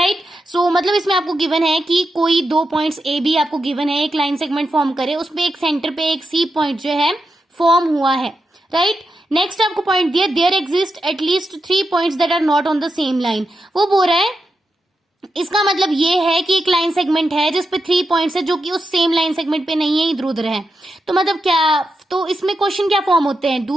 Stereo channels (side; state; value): both; normal; correlation 0.87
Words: So मतलब इसमें आपको गिवन है कि कोई दो पॉइंट्स ए बी आपको गिवन है, एक लाइन सेगमेंट फॉर्म करे, उसमें एक सेंटर पे एक सी पॉइंट जो है फॉर्म हुआ है. राइट. नेक्स्ट आपको पॉइंट दिया, there exist at least 3 points that are not on the same line. वो बोल रहा है, इसका मतलब ये है कि एक लाइन सेगमेंट है जिसपे 3 पॉइंट्स है जो कि उस सेम लाइन सेगमेंट पे नहीं है, इधर उधर है. तो मतलब क्या, तो इसमें क्वेश्चन क्या फॉर्म होते हैं?